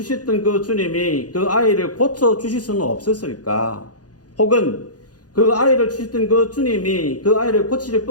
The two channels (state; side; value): late; right; 0.68 ms